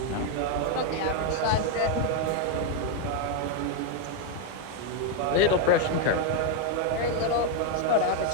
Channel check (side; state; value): both; different; correlation 0.01